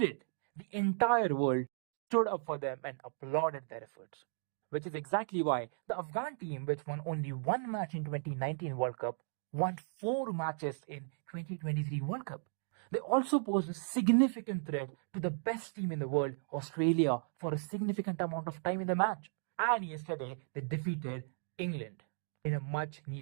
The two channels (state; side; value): silent; left; digital silence